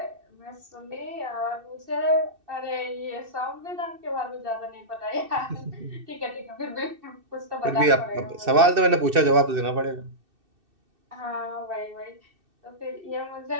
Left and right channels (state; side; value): late; left; 2.6 ms